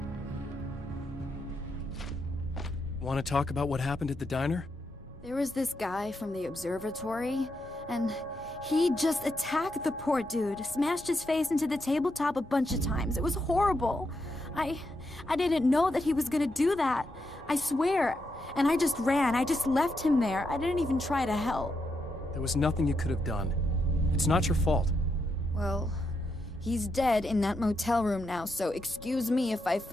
Want to talk about what happened at the diner? There was this guy from the observatory, and he just attacked the poor dude, smashed his face into the tabletop a bunch of times. It was horrible. I didn't know that he was gonna do that. I swear. And I just ran. I just left him there. I didn't even try to help. There was nothing you could have done. It's not your fault. Well, he's dead in that motel room now, so excuse me if I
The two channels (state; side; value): normal; both; correlation 0.82